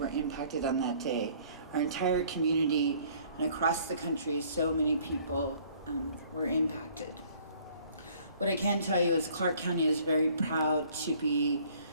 impacted on that day. Our entire community and across the country, so many people were impacted. What I can tell you is Clark County is very proud to be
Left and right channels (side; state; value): both; inverted; correlation -0.57